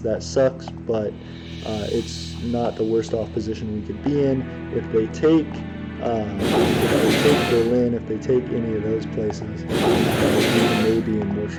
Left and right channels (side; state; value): both; identical; correlation 1.00